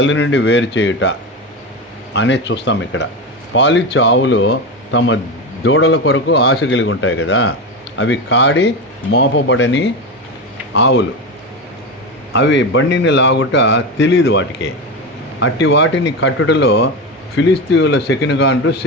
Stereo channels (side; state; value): both; normal; correlation 0.19